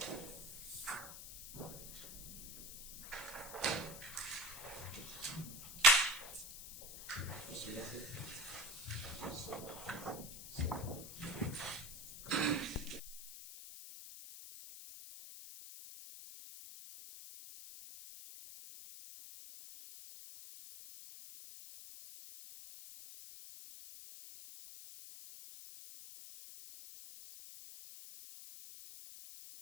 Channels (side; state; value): left; noise; hiss, 10 dB below the sound